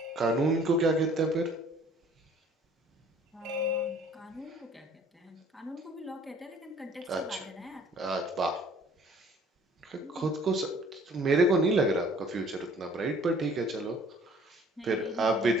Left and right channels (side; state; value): both; normal; correlation 0.55